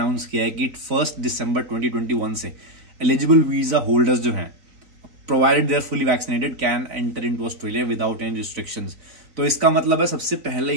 किया है कि 1 दिसंबर 2021 से एलिजिबल वीजा होल्डर्स जो हैं, provided they are fully vaccinated, can enter into Australia without any restrictions. तो इसका मतलब है, सबसे पहले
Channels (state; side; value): late; left; 3.9 ms